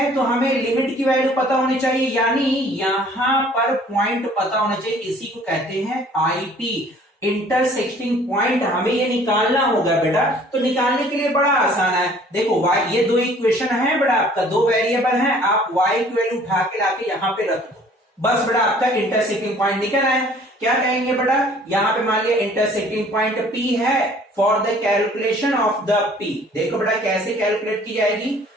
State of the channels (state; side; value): normal; both; correlation 0.54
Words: तो हमें लिमिट की वैल्यू पता होनी चाहिए, यानी यहां पर पॉइंट पता होना चाहिए, इसी को कहते हैं आईपी, इंटरसेक्टिंग पॉइंट। हमें ये निकालना होगा बेटा। तो निकालने के लिए बड़ा आसान है, देखो y, ये दो इक्वेशन है बेटा, आपका दो वेरिएबल है, आप y की वैल्यू उठा के लाके यहां पे रख दो, बस बेटा आपका इंटरसेक्टिंग पॉइंट निकल आया। क्या कहेंगे बेटा, यहां पे मान लिया इंटरसेक्टिंग पॉइंट P है, for the calculation of the P। देखो बेटा कैसे कैलकुलेट की जाएगी,